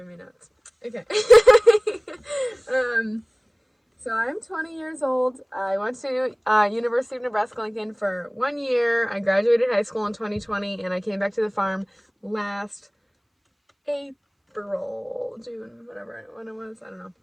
me nuts. Okay. So I'm 20 years old. I went to University of Nebraska-Lincoln for 1 year. I graduated high school in 2020, and I came back to the farm last June, when it was, I don't know.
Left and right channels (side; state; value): both; identical; correlation 1.00